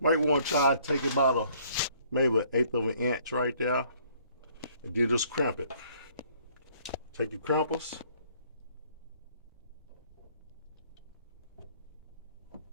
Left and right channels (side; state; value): both; inverted; correlation -0.61